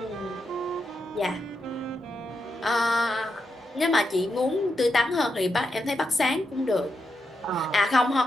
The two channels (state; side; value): normal; both; correlation 0.84